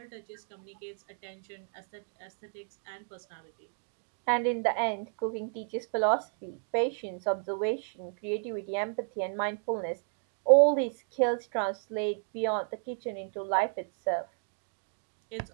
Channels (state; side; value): silent; left; digital silence